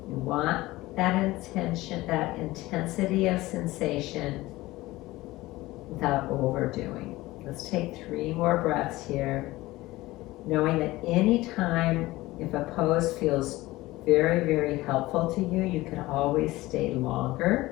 You want that intention, that intensity of sensation without overdoing. Let's take 3 more breaths here, knowing that anytime if a pose feels very, very helpful to you, you can always stay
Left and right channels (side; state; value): right; quieter; 18.7 dB